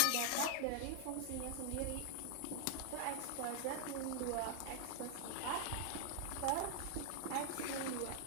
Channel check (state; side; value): different; both; correlation 0.00